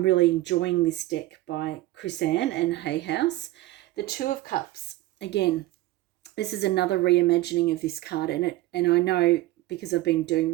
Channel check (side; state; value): left; quieter; 17.0 dB